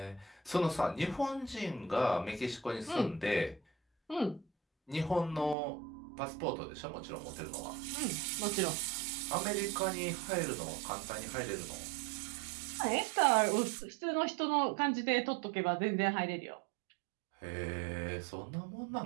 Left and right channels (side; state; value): left; drops out; at 5.6 s